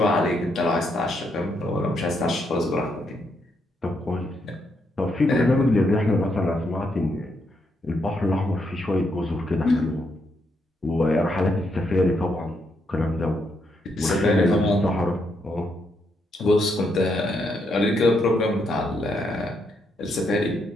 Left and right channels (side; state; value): both; normal; correlation 0.78